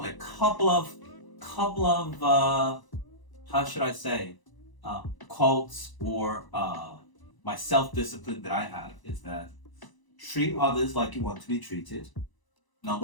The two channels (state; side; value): late; right; 1.0 ms